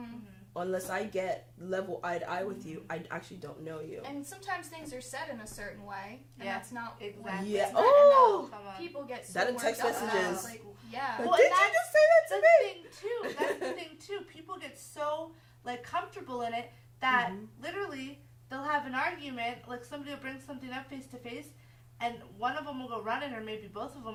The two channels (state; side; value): identical; both; correlation 1.00